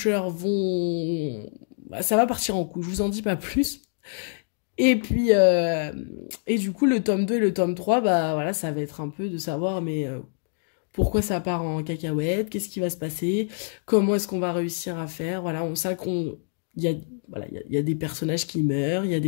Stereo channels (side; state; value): right; silent; digital silence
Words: vont... ça va partir en couille, je vous en dis pas plus. Et puis, et du coup, le tome 2 et le tome 3, bah voilà, ça va être un peu de savoir, mais pourquoi ça part en cacahuète, qu'est-ce qui va se passer, comment est-ce qu'on va réussir à faire, voilà, on sait il y a des personnages qui meurent, il y a